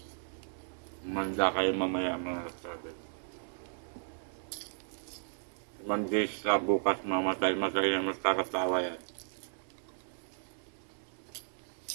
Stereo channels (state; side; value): silent; left; digital silence